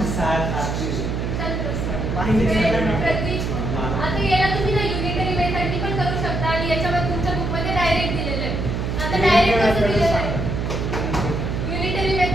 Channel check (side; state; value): right; noise; hum, 2 dB below the sound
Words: आता याला तुम्ही ना युनिटरी मेथडनी पण करू शकता आणि याच्यामध्ये तुमच्या बुक मध्ये डायरेक्ट दिलेलं आहे. आता डायरेक्ट कसं दिलेलं आहे युनिटरी